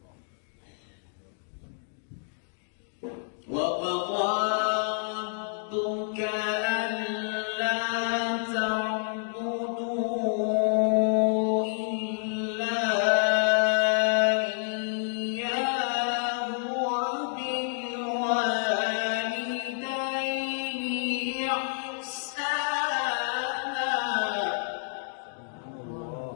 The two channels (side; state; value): right; silent; digital silence